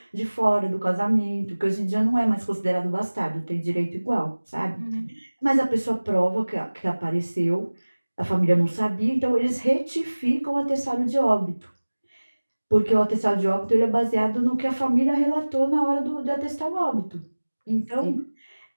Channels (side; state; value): both; inverted; correlation -1.00